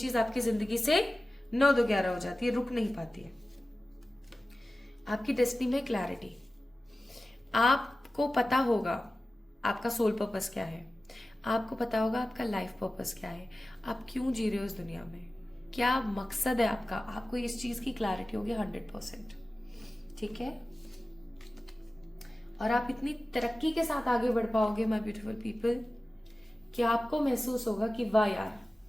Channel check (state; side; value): normal; both; correlation 0.96